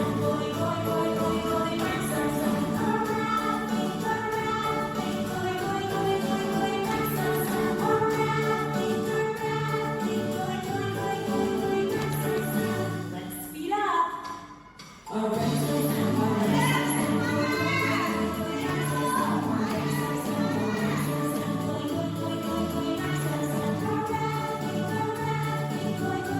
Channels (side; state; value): both; identical; correlation 1.00